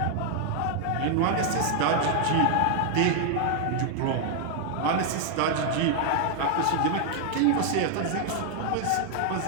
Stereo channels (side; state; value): both; different; correlation 0.00